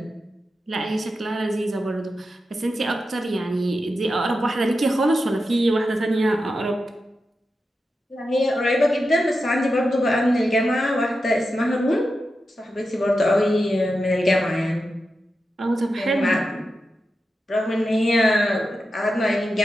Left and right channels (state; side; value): normal; both; correlation 0.90